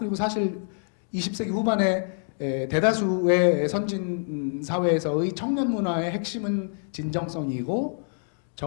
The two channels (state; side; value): silent; right; digital silence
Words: 사실 20세기 후반에 대다수의 선진 사회에서의 청년 문화의 핵심은 진정성이고,